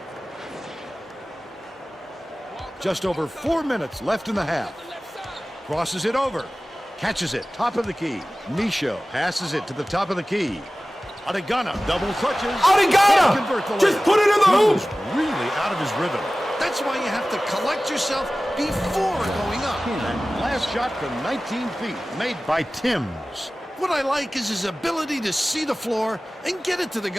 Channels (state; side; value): normal; both; correlation 0.97